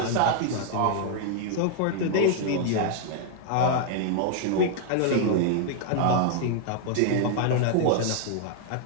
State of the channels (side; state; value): both; different; correlation 0.00